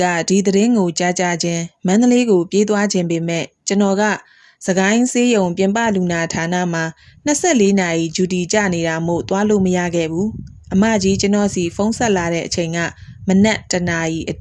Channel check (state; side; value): identical; both; correlation 1.00